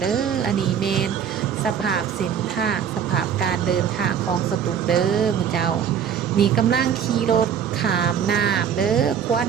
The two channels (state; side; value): quieter; left; 8.1 dB